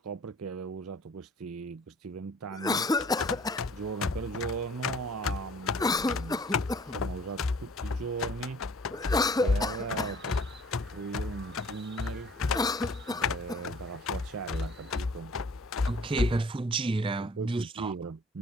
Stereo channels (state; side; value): normal; both; correlation 0.53